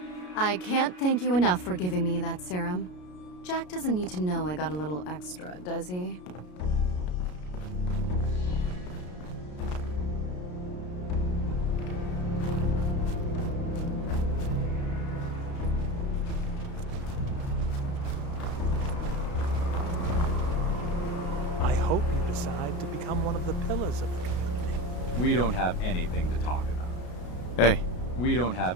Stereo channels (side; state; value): right; late; 33 ms